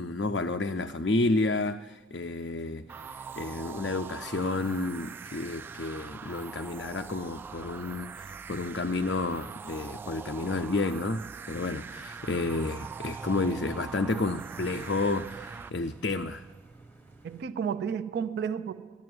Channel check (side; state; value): both; normal; correlation 0.42